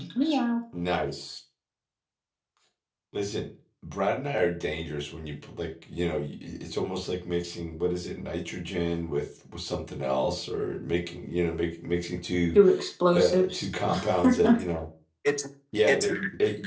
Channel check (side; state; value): both; identical; correlation 1.00